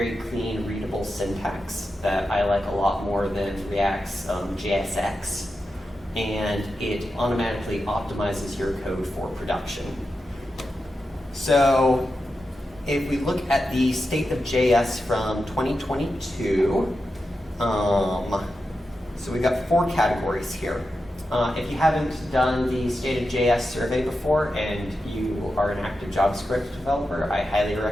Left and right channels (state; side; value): normal; both; correlation 0.90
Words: clean, readable syntax that I like a lot more than React's JSX, and it automatically optimizes your code for production. So if we look at the state of JS from 2022, so we've got 4 categories here. If you haven't done the State of JS survey before and you are an active JavaScript developer, I highly